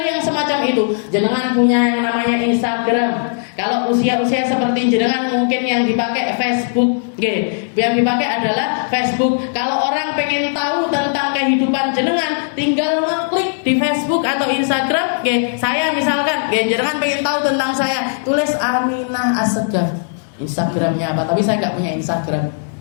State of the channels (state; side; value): silent; right; digital silence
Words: semacam itu. Jenengan punya yang namanya Instagram. Kalau usia-usia seperti jenengan, mungkin yang dipakai Facebook. Yang dipakai adalah Facebook. Kalau orang pengen tahu tentang kehidupan jenengan, tinggal ngeklik di Facebook atau Instagram. Saya misalkan, jenengan pengen tahu tentang saya, tulis Aminah Assegaf. Instagramnya apa? Tapi saya nggak punya Instagram.